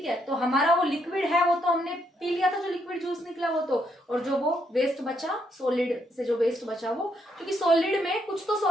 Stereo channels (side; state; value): both; normal; correlation 0.75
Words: है। तो हमारा वो लिक्विड है वो तो हमने पी लिया था, जो लिक्विड जूस निकला वो तो, और जो वो वेस्ट बचा, सॉलिड से जो वेस्ट बचा वो, क्योंकि सॉलिड में कुछ तो